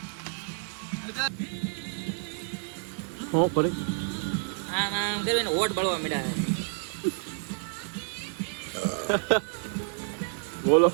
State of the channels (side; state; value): left; silent; 58 dB below the other